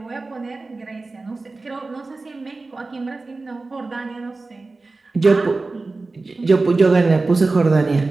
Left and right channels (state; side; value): quieter; left; 3.5 dB